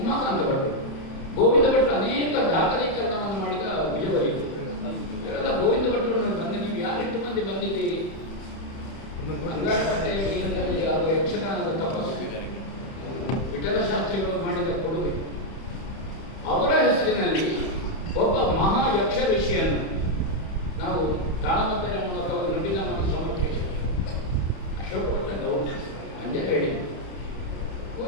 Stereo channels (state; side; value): late; right; 31 ms